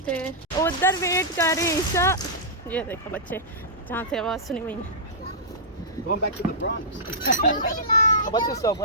उधर वेट कर रहे हैं ईशा। ये देखो बच्चे जहाँ से आवाज़ सुनी हुई है। Going back to the Bronx. What's yourself?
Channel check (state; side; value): normal; both; correlation -0.16